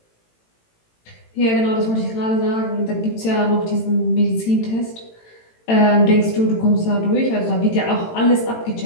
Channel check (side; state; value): right; late; 18 ms